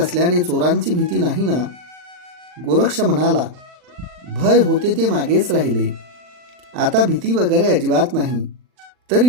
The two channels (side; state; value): left; late; 40 ms